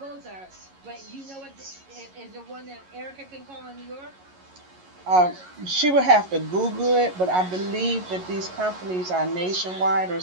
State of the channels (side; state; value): left; late; 11 ms